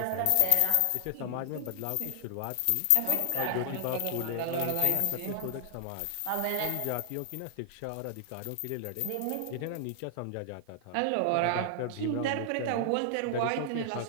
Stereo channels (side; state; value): both; different; correlation 0.00